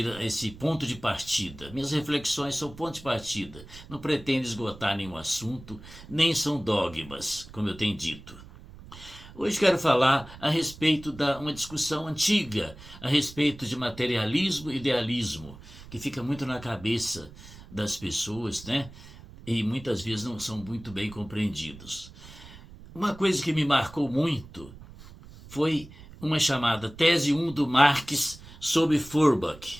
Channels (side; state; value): right; noise; rumble, 18 dB below the sound